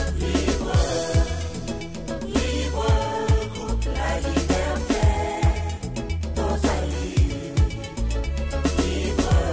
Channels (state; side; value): identical; both; correlation 1.00